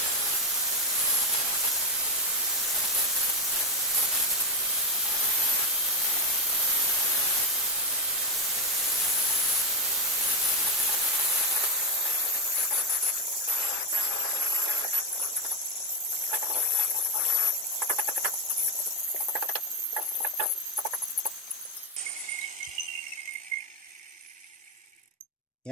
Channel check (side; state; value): both; normal; correlation 0.09